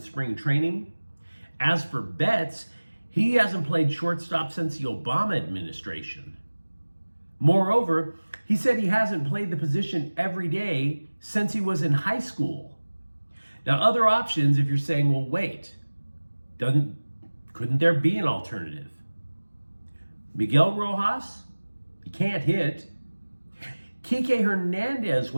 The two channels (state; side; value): inverted; both; correlation -1.00